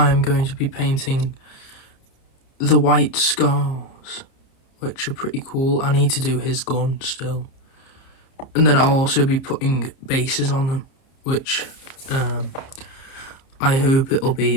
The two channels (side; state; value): right; late; 30 ms